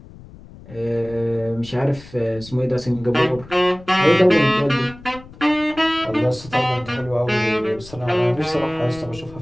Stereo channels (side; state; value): left; noise; rumble, 19 dB below the sound